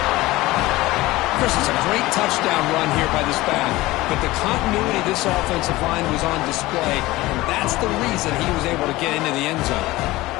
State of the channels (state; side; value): quieter; right; 18.9 dB